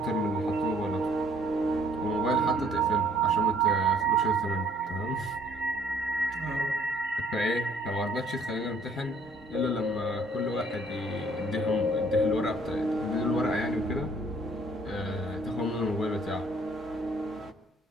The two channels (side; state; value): both; normal; correlation 0.60